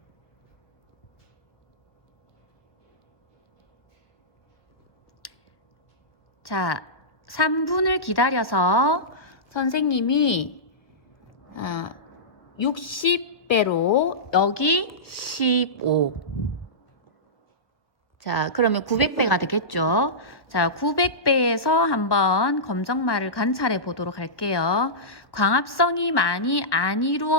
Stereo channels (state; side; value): late; right; 1.4 ms